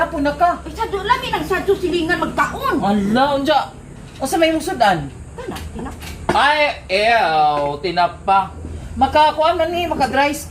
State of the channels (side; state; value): both; identical; correlation 1.00